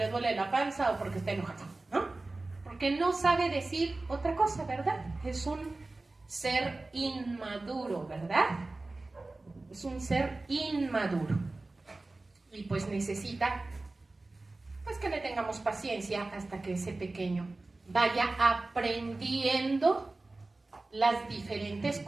duele la panza o porque está enojado, ¿no? Porque no sabe decir otra cosa, ¿verdad? Es un ser inmaduro, ¿verdad? Es un ser inmaduro. Y pues necesita, pues que le tengamos paciencia hasta que ese pequeño vaya aprendiendo las diferentes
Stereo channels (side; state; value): left; quieter; 3.1 dB